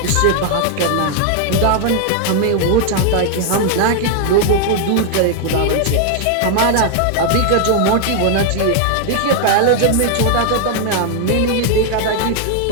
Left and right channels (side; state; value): both; different; correlation 0.00